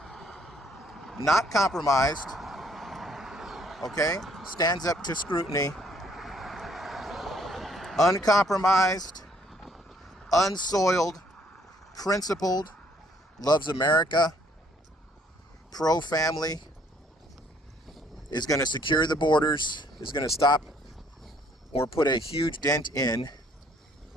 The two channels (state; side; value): normal; both; correlation 0.64